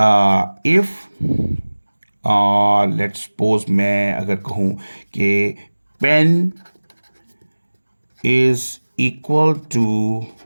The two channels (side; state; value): both; inverted; correlation -1.00